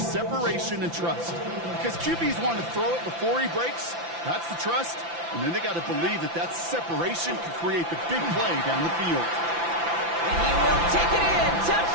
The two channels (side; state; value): left; late; 5.9 ms